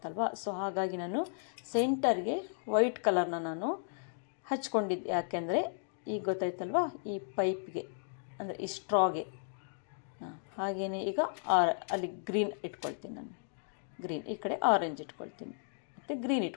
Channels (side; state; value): right; silent; digital silence